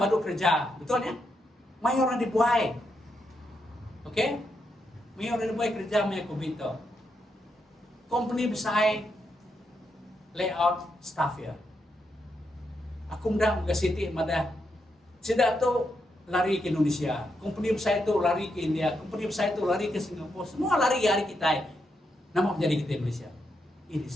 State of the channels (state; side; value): normal; both; correlation 0.82